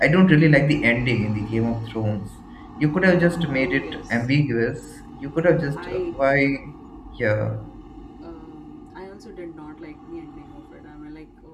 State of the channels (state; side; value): identical; both; correlation 1.00